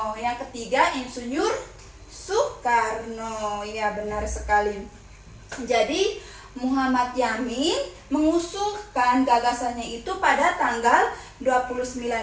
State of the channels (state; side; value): identical; both; correlation 1.00